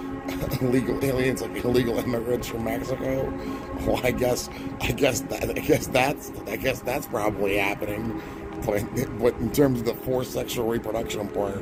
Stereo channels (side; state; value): both; identical; correlation 1.00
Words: illegal aliens, like illegal immigrants from Mexico? Well, I guess that's probably happening. But in terms of the forced sexual reproduction